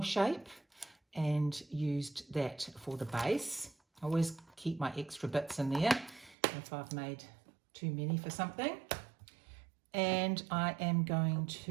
shape, and used that for the base. I always keep my extra bits in there if I've made too many for something. And I am going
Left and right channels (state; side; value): drops out; left; at 6.4 s